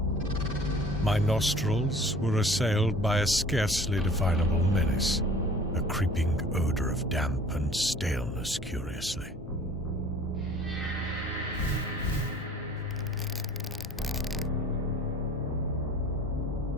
My nostrils were assailed by a scarcely definable menace, a creeping odor of damp and staleness, curiously.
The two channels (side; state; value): both; normal; correlation 0.48